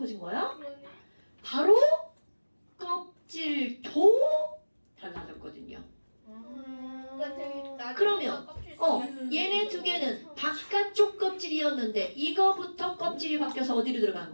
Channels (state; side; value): inverted; both; correlation -1.00